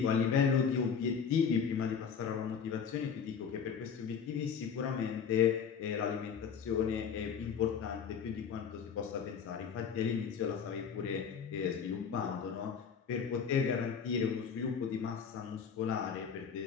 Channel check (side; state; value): right; quieter; 6.9 dB